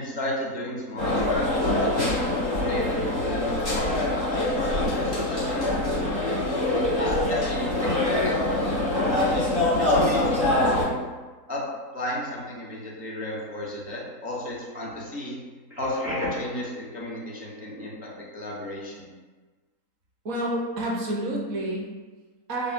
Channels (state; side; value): late; left; 3.8 ms